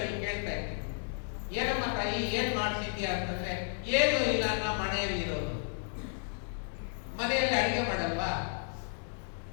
ಕೇಳ್ತಾ ಇದ್ದೆ, ಏನಮ್ಮ ತಾಯಿ ಏನ್ ಮಾಡ್ತಿದ್ಯಾ ಅಂತಂದ್ರೆ, ಏನು ಇಲ್ಲ, ನಾ ಮನೆಯಲ್ಲಿ ಇರೋದು. ಮನೆಯಲ್ಲಿ ಅಡಿಗೆ ಮಾಡಲ್ವಾ,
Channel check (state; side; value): silent; right; 56 dB below the other